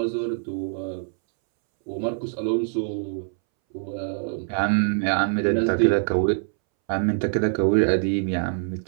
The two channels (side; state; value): left; silent; 62 dB below the other